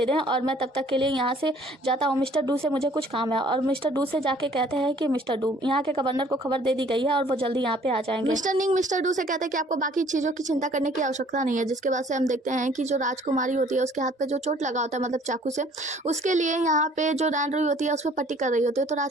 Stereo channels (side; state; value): both; normal; correlation 0.56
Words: दें और मैं तब तक के लिए यहाँ से जाता हूँ। मिस्टर डू से मुझे कुछ काम है। और मिस्टर डू से जाके कहते हैं कि मिस्टर डू, यहाँ के गवर्नर को खबर दे दी गई है और वो जल्दी यहाँ पे आ जाएंगे। मिस्टर निंग मिस्टर डू से कहते हैं कि आपको बाकी चीज़ों की चिंता करने की आवश्यकता नहीं है। जिसके बाद से हम देखते हैं कि जो राजकुमारी होती है उसके हाथ पे जो चोट लगा होता है, मतलब चाकू से, उसके लिए यहाँ पे जो रैन रुई होती है उस पर पट्टी कर रही होती है। तो